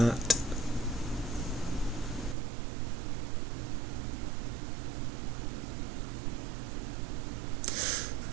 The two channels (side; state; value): left; drops out; at 2.4 s